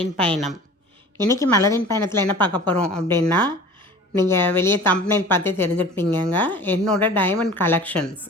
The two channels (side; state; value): both; normal; correlation 0.42